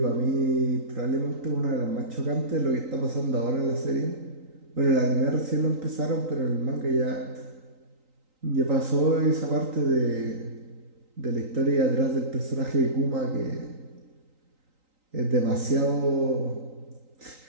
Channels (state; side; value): late; left; 3.9 ms